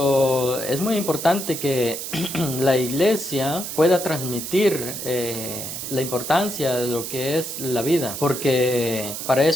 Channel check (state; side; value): noise; right; hiss, 6 dB below the sound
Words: es muy importante que la iglesia pueda transmitir la importancia de lo que es la vida, porque para